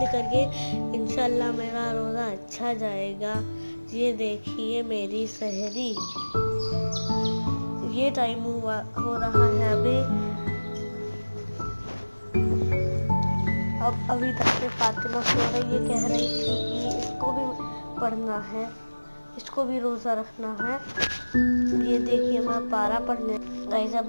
करके। इंशाल्लाह मेरा रोज़ा अच्छा जाएगा। ये देखिए मेरी सहरी। ये टाइम हो रहा है अभी तक से फातिमा सो रही। ये कह रही थी कि इसको भी पढ़ना है, इसको भी रोज़ा रखना है। ये देखिए मैं पारा पढ़ने गाइस अब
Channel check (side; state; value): both; inverted; correlation -1.00